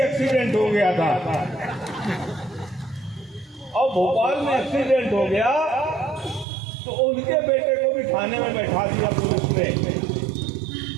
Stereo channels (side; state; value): left; drops out; at 6.5 s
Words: एक्सीडेंट हो गया था, और भोपाल में एक्सीडेंट हो गया तो उनके बेटे को भी थाने में बैठा दिया पुलिस ने।